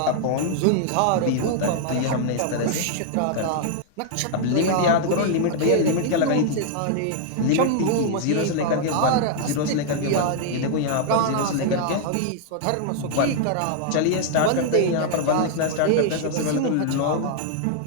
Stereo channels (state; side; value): different; both; correlation 0.00